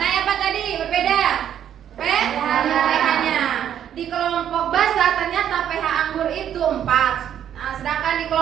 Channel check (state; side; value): quieter; left; 9.9 dB